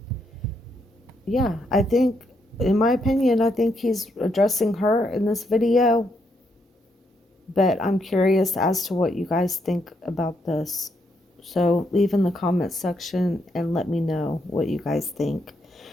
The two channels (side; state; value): both; normal; correlation 0.77